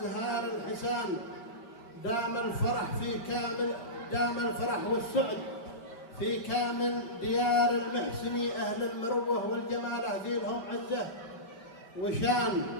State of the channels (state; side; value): late; right; 5.1 ms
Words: الحسان. دام الفرح والسعد في كامل ديار المحسني. أهل المروة والجمال ذي لهم عزة وشان.